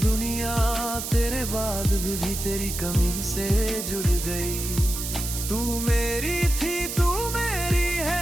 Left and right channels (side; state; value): right; noise; hiss, 5 dB below the sound